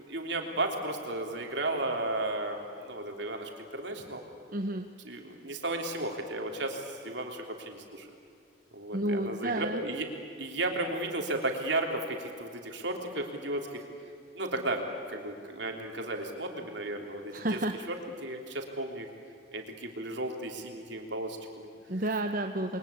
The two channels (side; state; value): both; normal; correlation -0.03